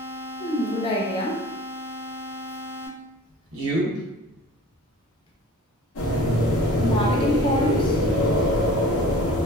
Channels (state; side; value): normal; both; correlation 0.44